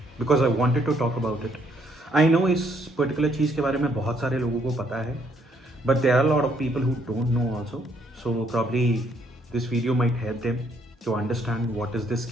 because I wanted to talk about it. I know इस पर्टिकुलर चीज़ के बारे में बहुत सारे लोगों को पता है, but there are lot of people who don't know also. So probably this video might help them to understand what is this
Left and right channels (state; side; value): normal; both; correlation 0.69